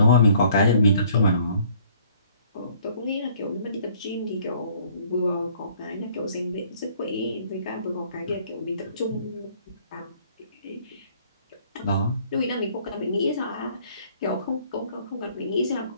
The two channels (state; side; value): inverted; both; correlation -0.59